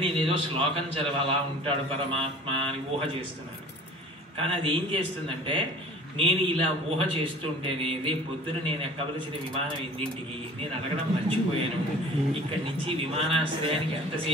నేను ఏదో శ్లోకం చదవాలా ఉంటాడు పరమాత్మ అని ఊహ చేస్తున్నాను. కానీ అది ఏం చేస్తుందంటే, నేను ఇలా ఊహ చేస్తుంటేనే రేపు పొద్దున నేను ఎక్కవలసిన విమానం ఎన్నింటికి నేను అడగడం మర్చిపోయాను. ఇక్కడి నుంచి విమానాశ్రయానికి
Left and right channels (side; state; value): both; normal; correlation 0.44